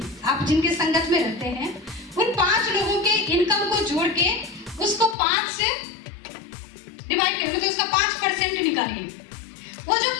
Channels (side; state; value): right; drops out; at 5.2 s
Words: आप जिनके संगत में रहते हैं उन 5 लोगों के इनकम को जोड़ के उसको 5 से डिवाइड करें, मतलब उसका 5% निकालिए। वो जो